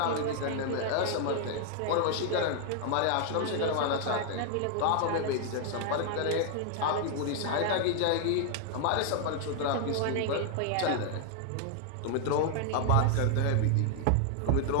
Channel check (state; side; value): different; both; correlation 0.00